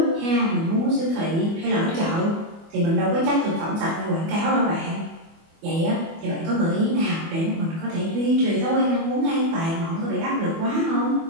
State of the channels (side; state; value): left; late; 24 ms